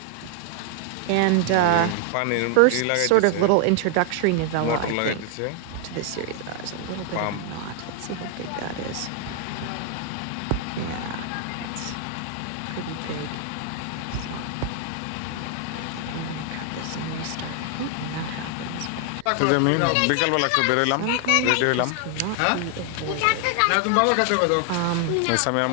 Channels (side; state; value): both; different; correlation 0.00